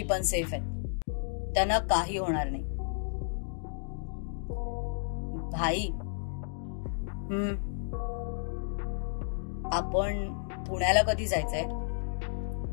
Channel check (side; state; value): right; silent; digital silence